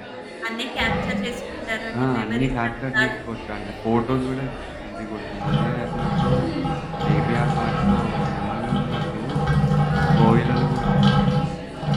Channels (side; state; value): both; identical; correlation 1.00